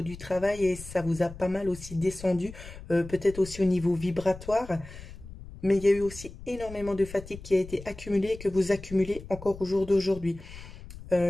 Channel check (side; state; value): left; noise; rumble, 15 dB below the sound